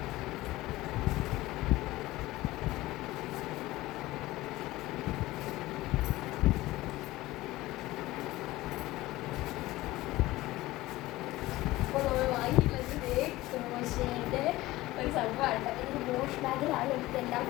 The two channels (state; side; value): quieter; right; 18.0 dB